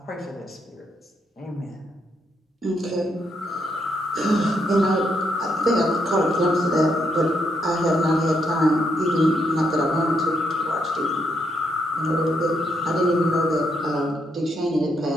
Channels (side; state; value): both; normal; correlation 0.77